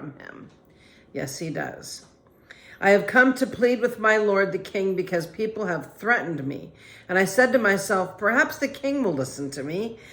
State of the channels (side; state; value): both; identical; correlation 1.00